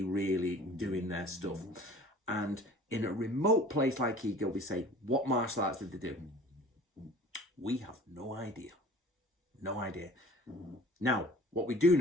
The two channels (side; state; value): both; normal; correlation 0.45